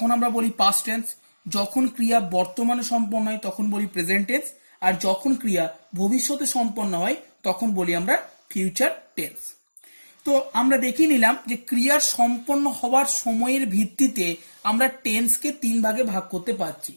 আমরা বলি পাস্ট টেন্স, যখন ক্রিয়া বর্তমানে সম্পন্ন হয় তখন বলি প্রেজেন্ট টেন্স, আর যখন ক্রিয়া ভবিষ্যতে সম্পন্ন হয় তখন বলি আমরা ফিউচার টেন্স। তো আমরা দেখিয়ে নিলাম যে ক্রিয়ার সম্পন্ন হওয়ার সময়ের ভিত্তিতে আমরা টেন্সকে তিন ভাগে ভাগ করতে পারছি।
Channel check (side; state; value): both; inverted; correlation -1.00